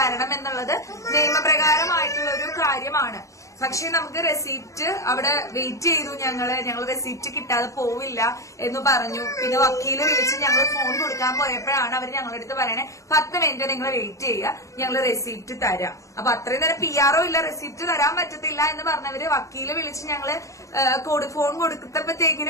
എന്നുള്ളത് നിയമപ്രകാരമായിട്ടുള്ള ഒരു കാര്യമാണ്. പക്ഷെ നമുക്ക് റെസീപ്റ്റ് അവിടെ വെയിറ്റ് ചെയ്തു. ഞങ്ങൾ റെസീപ്റ്റ് കിട്ടാതെ പോവില്ല എന്ന് പറഞ്ഞു. പിന്നെ വക്കീല് വിളിച്ച് ഞങ്ങൾ ഫോൺ കൊടുക്കാൻ പോയപ്പോഴാണ് അവർ ഞങ്ങളുടെ അടുത്ത് പറയണേ 10 മിനിറ്റ് നിങ്ങൾ വെയിറ്റ് ചെയ്യുക, ഞങ്ങൾ റെസീപ്റ്റ് തരാം. അപ്പൊ അത്രയും നേരം PR ഇല്ല, റെസീപ്റ്റ് തരാൻ പറ്റത്തില്ല എന്ന് പറഞ്ഞവര് വക്കീല് വിളിച്ച് ഞങ്ങള് ഫോൺ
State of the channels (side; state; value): right; late; 0.15 ms